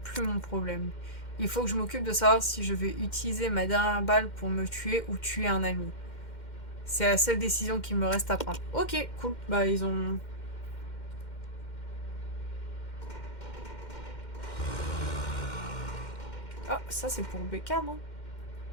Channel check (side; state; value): right; late; 2.1 ms